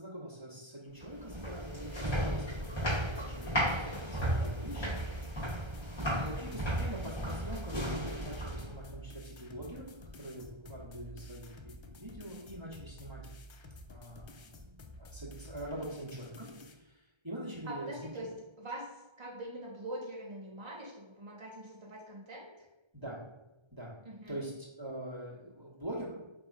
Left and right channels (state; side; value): late; left; 1.3 ms